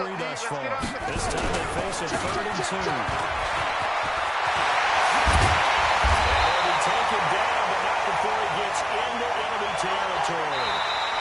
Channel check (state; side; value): identical; both; correlation 1.00